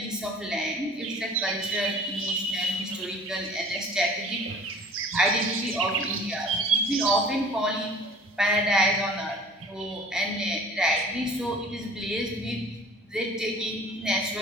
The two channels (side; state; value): both; normal; correlation 0.47